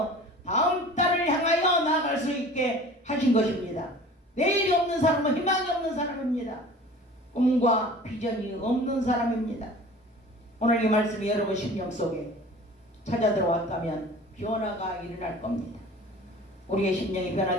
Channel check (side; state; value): both; normal; correlation 0.43